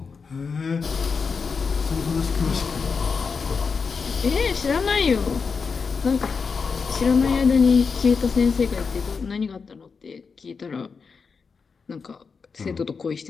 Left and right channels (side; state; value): right; quieter; 5.3 dB